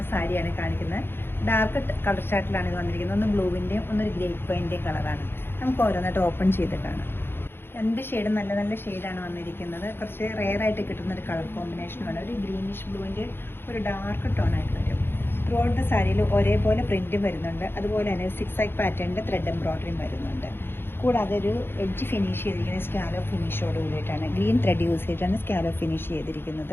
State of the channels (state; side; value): late; right; 0.11 ms